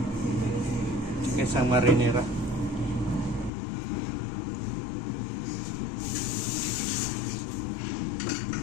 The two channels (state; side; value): drops out; right; at 3.5 s